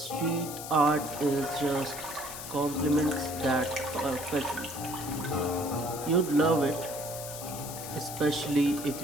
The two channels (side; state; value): left; noise; hiss, 9 dB below the sound